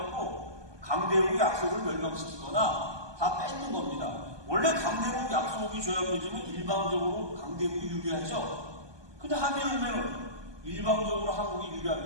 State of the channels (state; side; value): late; left; 1.2 ms